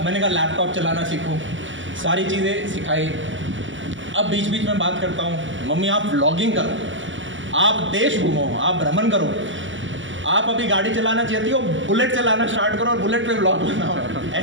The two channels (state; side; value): late; left; 0.56 ms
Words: मैंने कहा लैपटॉप चलाना सीखो, सारी चीज़ें सिखाई। अब बीच बीच में बात करता हूँ, मम्मी आप व्लॉगिंग करो, आप देश घूमो, आप भ्रमण करो, आप अभी गाड़ी चलाना चाहती हो, बुलेट चलाना स्टार्ट करो और बुलेट पे व्लॉग बनाओ।